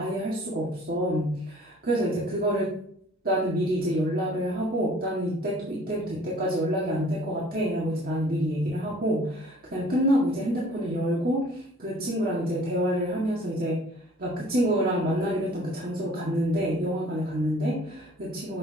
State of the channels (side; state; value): both; normal; correlation 0.52